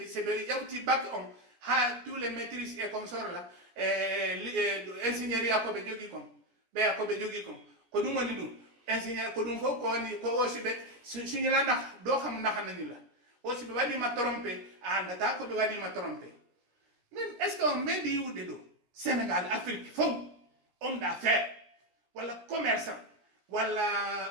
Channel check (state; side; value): late; left; 17 ms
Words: be yawti bac on ha tous les maîtrises et consorts là ingénierie ko be jogi kom be ko be jogi ko dum woni dum ingénieur ko dum ko woni ko aussi be suñu la ndax do xam ndax nañu la aussi be wadi ma tromper andata ko be wadi ma tromper même est-ce qu'on met di wude do Sénégal Afrique fo homme d'affaires wala commerçant